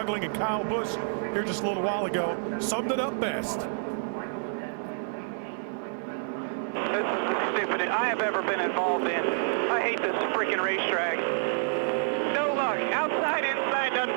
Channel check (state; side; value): silent; left; 55 dB below the other